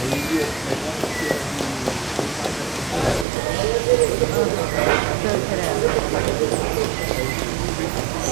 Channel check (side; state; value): left; drops out; at 3.2 s